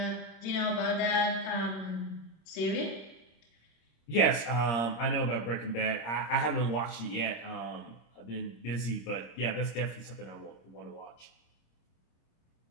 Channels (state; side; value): late; right; 26 ms